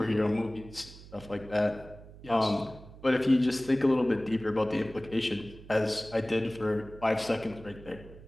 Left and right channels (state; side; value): noise; right; hum, 18 dB below the sound